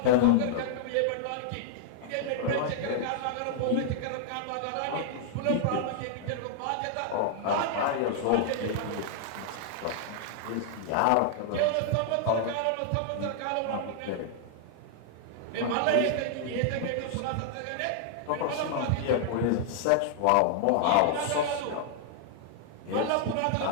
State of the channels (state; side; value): different; both; correlation -0.01